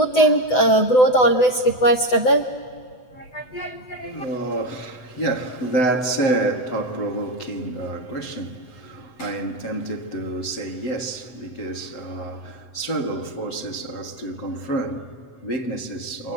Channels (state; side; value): late; right; 8.0 ms